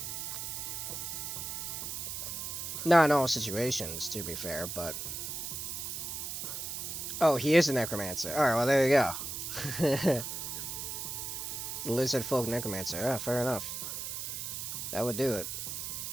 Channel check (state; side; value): noise; right; hiss, 5 dB below the sound